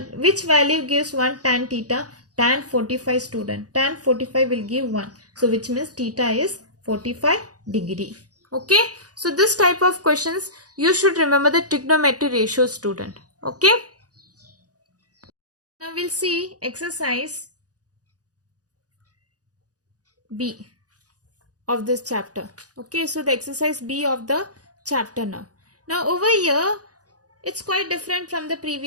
which value gives 1 tan theta? Tan 45 student. Tan 45 will give 1. So which means theta is 45 degree. Okay. So this type of questions you should remember the trigonometry ratio student. Okay. Now we'll see exercise B of this chapter. Okay. So the exercise B of the chapter now. Now over here, it's quite different from the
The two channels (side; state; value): left; late; 0.67 ms